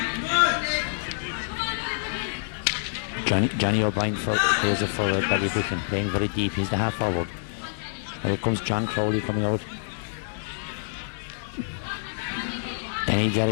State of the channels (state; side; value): silent; right; digital silence